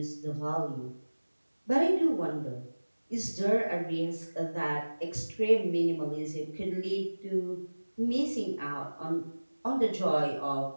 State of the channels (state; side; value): inverted; both; correlation -1.00